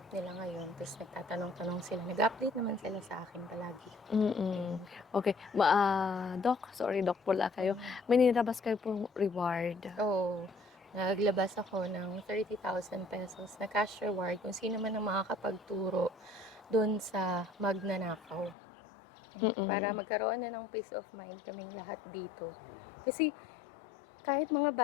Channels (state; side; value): drops out; right; at 18.6 s